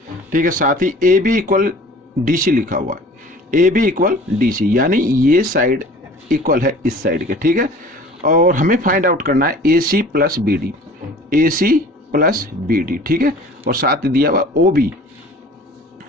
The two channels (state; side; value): normal; both; correlation 0.46